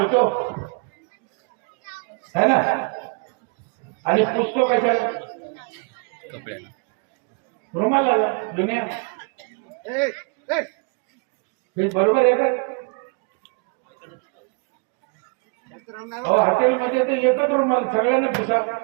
है ना, आणि पुसतो कशाला? रुमाला जुन्या. हे बरोबर आहे का? हॉटेलमध्ये ते एकच रुमाल सगळ्यांनी पुसा,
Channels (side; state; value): left; quieter; 34.9 dB